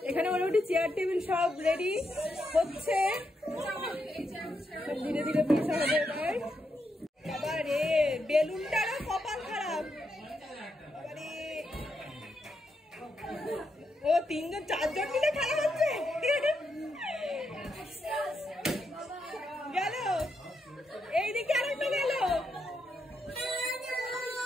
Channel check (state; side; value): normal; both; correlation 0.82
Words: এখানে মোটামুটি চেয়ার টেবিল সব রেডি হচ্ছে, সব ধীরে ধীরে বসা হবে এবার। বাবা রে, বেলুনটারও কপাল খারাপ। ও তিনজন চারজন মিলে খেলা হচ্ছে। গেল এইদিকে আরেকটা গেল।